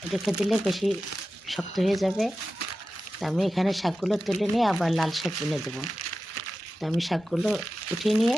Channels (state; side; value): normal; both; correlation 0.93